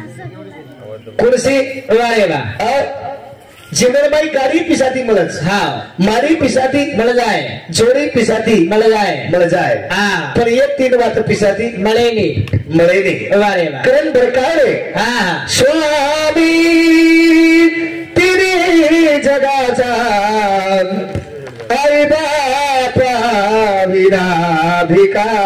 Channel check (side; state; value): both; identical; correlation 1.00